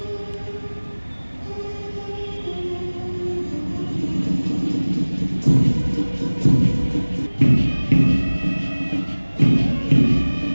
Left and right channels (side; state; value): both; inverted; correlation -1.00